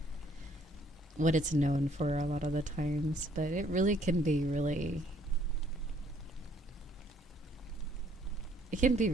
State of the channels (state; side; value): normal; both; correlation 0.63